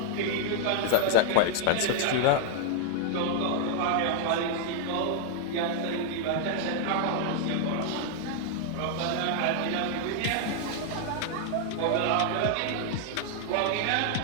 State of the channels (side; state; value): both; different; correlation 0.00